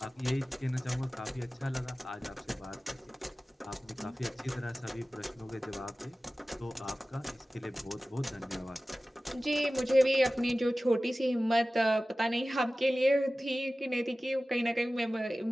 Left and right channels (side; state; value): both; normal; correlation 0.96